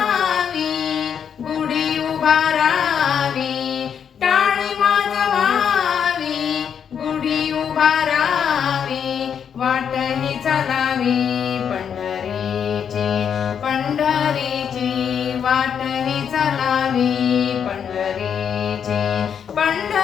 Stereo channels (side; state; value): right; quieter; 7.8 dB